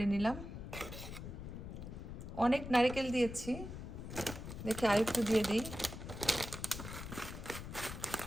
নিলাম। অনেক নারিকেল দিয়েছি, দেখে আরেকটু দিয়ে দিই।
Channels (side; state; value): left; noise; rumble, 9 dB below the sound